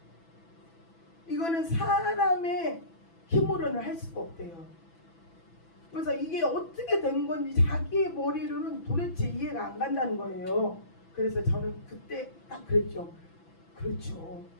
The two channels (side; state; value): right; late; 6.0 ms